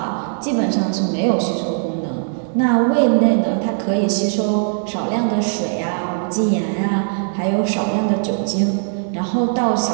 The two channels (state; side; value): silent; left; digital silence